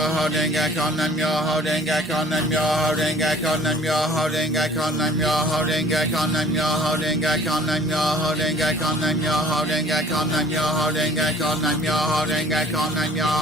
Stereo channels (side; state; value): both; normal; correlation 0.51